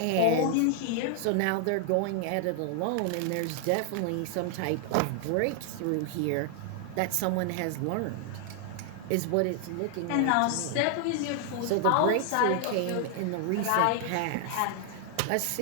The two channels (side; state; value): both; different; correlation 0.00